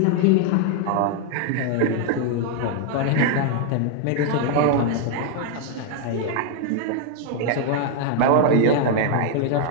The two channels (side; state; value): both; different; correlation 0.00